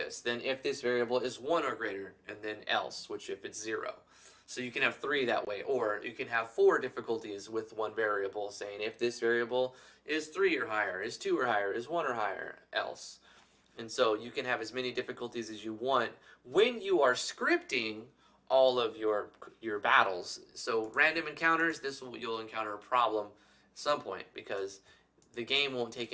Then if this variable is 1 or greater, and then else, which if it's 0. So you can have 3 that way, or you can have 4 difficulties with one variable, saying if this variable is 3 or higher, is 2 or higher, is 1 or higher, else. And so you can have as many difficulties as you want when you are scripting all of your battles. So random encounters, you'll encounter a problem at some point because the game won't take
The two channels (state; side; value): identical; both; correlation 1.00